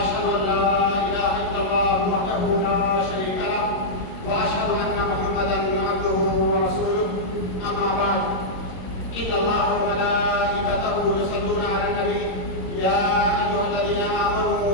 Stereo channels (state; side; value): late; right; 22 ms